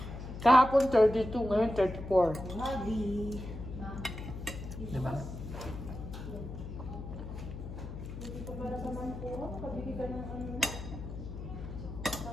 Kahapon 32, ngayon 34. Grabe. Diba? Hindi ko para sa mangkuro. Pabili ka ng ano na?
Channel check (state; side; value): noise; left; hum, 9 dB below the sound